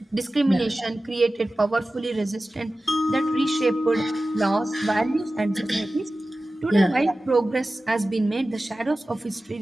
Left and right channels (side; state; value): both; normal; correlation 0.95